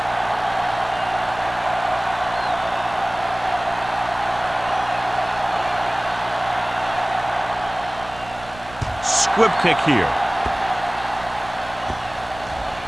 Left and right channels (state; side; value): noise; right; rumble, 18 dB below the sound